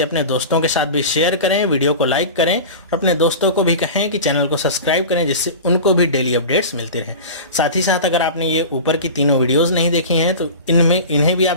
अपने दोस्तों के साथ भी शेयर करें, वीडियो को लाइक करें और अपने दोस्तों को भी कहें कि चैनल को सब्सक्राइब करें, जिससे उनको भी डेली अपडेट्स मिलती रहें। साथ ही साथ अगर आपने ये ऊपर की तीनों वीडियोज़ नहीं देखी हैं तो इन्हें भी आप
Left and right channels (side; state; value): both; inverted; correlation -0.32